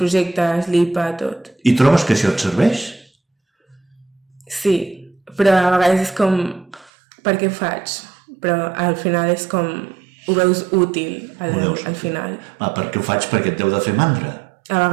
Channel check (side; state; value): left; drops out; at 6.9 s